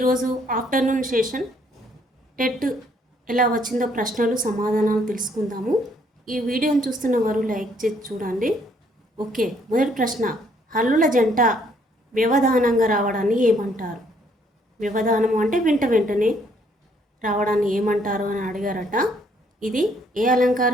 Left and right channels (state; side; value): normal; both; correlation 0.67